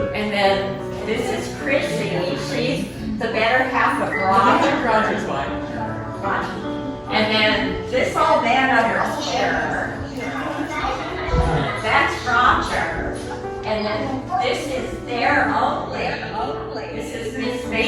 And then this is Chrissy. She's the better half of Robert. Roger's wife. And then this old man over here, that's Roger. And then this is their only. This is Miss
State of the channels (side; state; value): both; identical; correlation 1.00